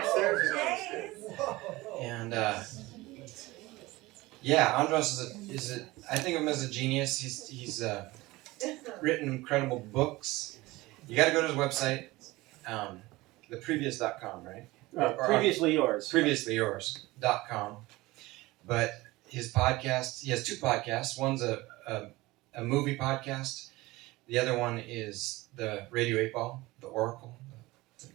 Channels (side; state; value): left; quieter; 20.2 dB